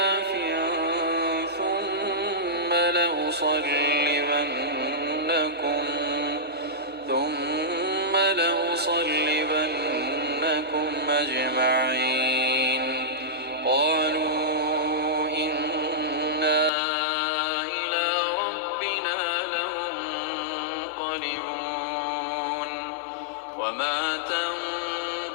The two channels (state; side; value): drops out; right; at 16.7 s